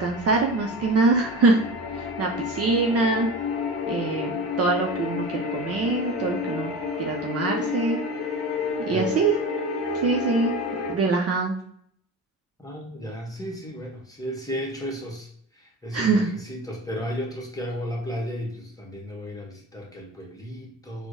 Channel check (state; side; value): normal; both; correlation 0.31